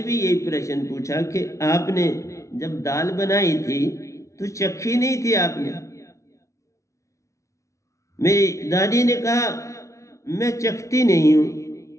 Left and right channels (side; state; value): right; late; 0.14 ms